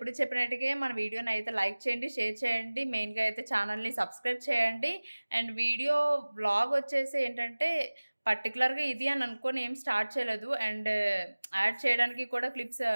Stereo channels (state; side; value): inverted; both; correlation -1.00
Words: చెప్పినట్టుగా మన వీడియోని అయితే లైక్ చేయండి, షేర్ చేయండి, మెయిన్గా అయితే ఛానల్ని సబ్స్క్రైబ్ చేయండి. అండ్ వ్లాగ్ వచ్చేసి ఏంటంటే పర్టికులర్గా ఇది అని అనుకొని ఏం స్టార్ట్ చేయలేదు. అండ్ యాడ్ చేయడానికి కూడా క్లిప్స్